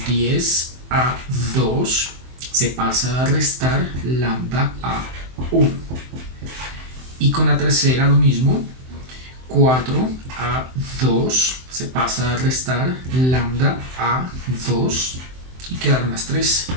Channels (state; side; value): late; left; 23 ms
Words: 10a2. Se pasa a restar lambda a1. Y con la tercera lo mismo, 4a2 se pasa a restar lambda a2 y quedaron las tres